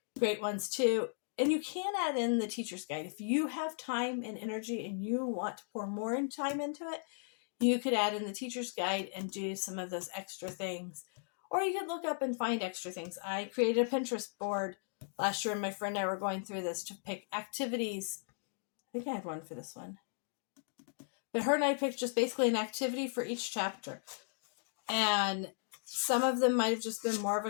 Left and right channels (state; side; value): silent; right; digital silence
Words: great ones too. And you can add in the teacher's guide. If you have time and energy and you want to pour more time into it, you could add in the teacher's guide and do some of those extra things. Or you could look up and find extra things. I created a Pinterest board last year, and my friend and I were going through this to pick activities. I think I had one for this one. But her and I picked just basically an activity for each chapter. And some of them might have just been more of a